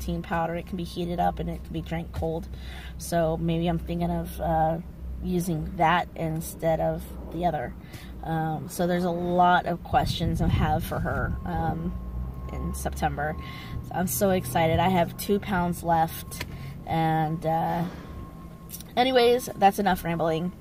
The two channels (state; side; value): identical; both; correlation 1.00